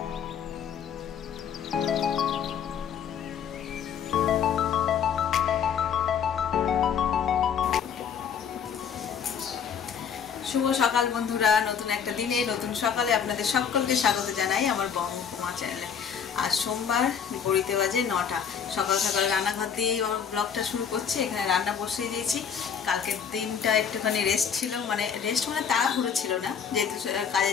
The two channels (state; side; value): quieter; right; 7.4 dB